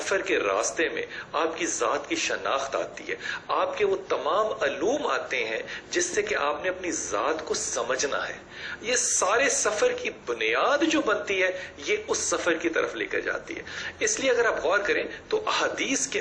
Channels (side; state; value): both; identical; correlation 1.00